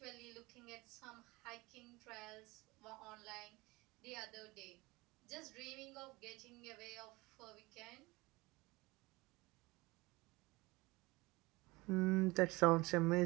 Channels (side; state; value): left; quieter; 22.6 dB